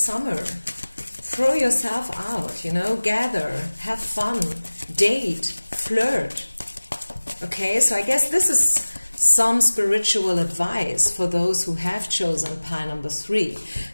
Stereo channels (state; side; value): inverted; both; correlation -1.00